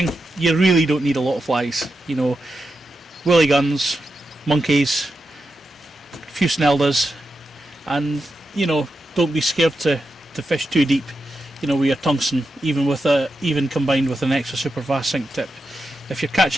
you really don't need a lot of flies. You know, willy guns, monkeys, a few Sneldas, and you know, don't be scared to fish too deep. You know, with your tungsten, even combined with an extra super fast sink tip. If you're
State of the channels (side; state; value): both; normal; correlation 0.88